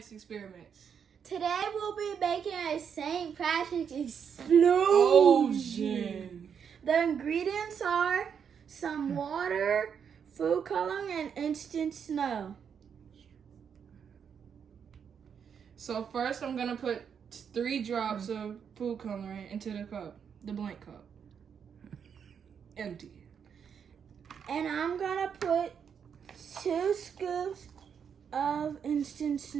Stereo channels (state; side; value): quieter; left; 7.3 dB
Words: experiments. Today we'll be making a St. Patrick explosion. The ingredients are some water, food coloring, and instant snow. So first I'm going to put 3 drops of food coloring into the cup, the blank cup. Empty. And I'm going to put 2 scoops of instant